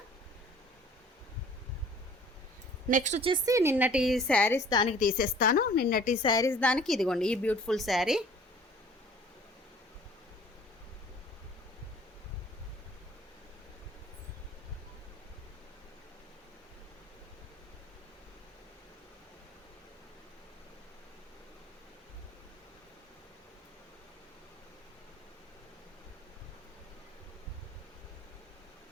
నెక్స్ట్ వచ్చేసి నిన్నటి శారీస్ దానికి తీసేస్తాను. నిన్నటి శారీస్ దానికి ఇదిగోండి ఈ బ్యూటిఫుల్ శారీ.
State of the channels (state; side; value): normal; both; correlation 0.50